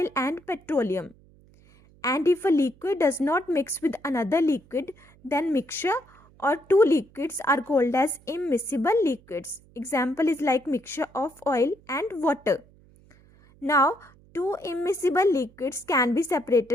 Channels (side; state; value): right; noise; hum, 28 dB below the sound